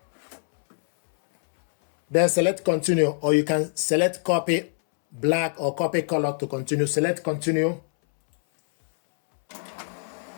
Then select continue, or you can select copy black or copy color to continue. Select continue.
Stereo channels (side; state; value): right; silent; 62 dB below the other